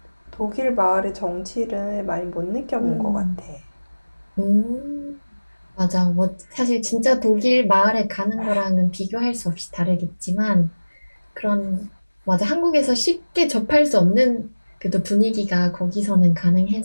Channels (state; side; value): inverted; both; correlation -1.00